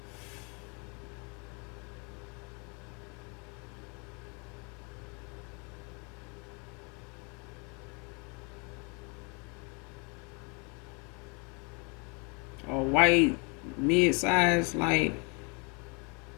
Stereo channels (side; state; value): right; quieter; 32.9 dB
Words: Or white mid-size like